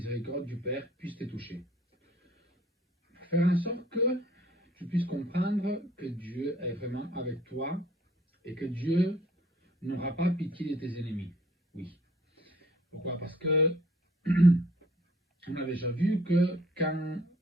du Père puisse te toucher. Faire en sorte que tu puisses comprendre que Dieu est vraiment avec toi et que Dieu n'aura pas pitié de tes ennemis. Oui. Pourquoi? Parce que on a déjà vu que quand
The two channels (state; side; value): normal; both; correlation 0.57